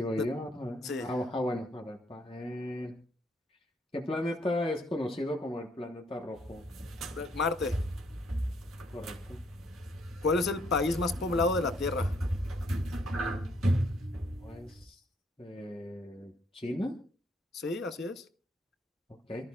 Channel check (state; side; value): normal; both; correlation 0.69